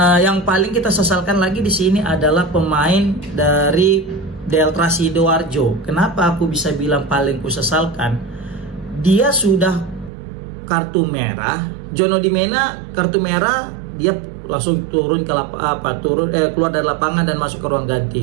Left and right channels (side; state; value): left; drops out; at 10.1 s